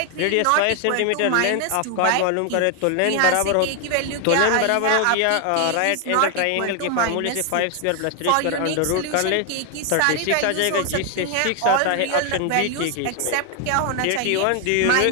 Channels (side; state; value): both; different; correlation 0.00